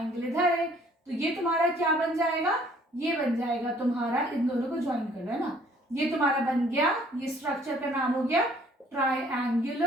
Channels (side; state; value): both; normal; correlation 0.59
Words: इधर है, तो ये तुम्हारा क्या बन जाएगा, ये बन जाएगा तुम्हारा, इन दोनों को ज्वाइन कर लो, है ना। ये तुम्हारा बन गया, ये स्ट्रक्चर का नाम हो गया